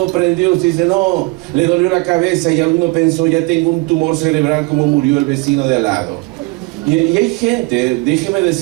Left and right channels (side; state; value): left; quieter; 25.9 dB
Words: prendió, usted dice, no, le dolió la cabeza y alguno pensó, ya tengo un tumor cerebral como murió el vecino de al lado. Y hay gente, déjeme